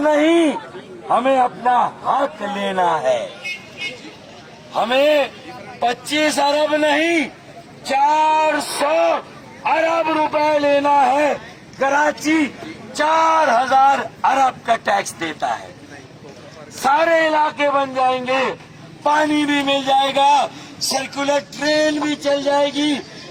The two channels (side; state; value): both; identical; correlation 1.00